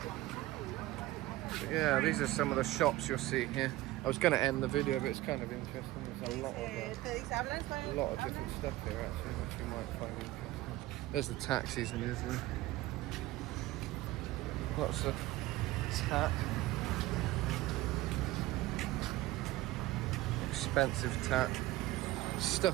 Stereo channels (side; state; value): left; quieter; 17.2 dB